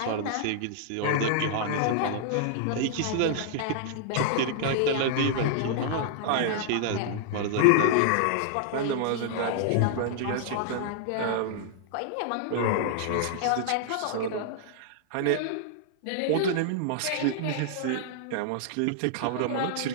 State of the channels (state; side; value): different; both; correlation -0.01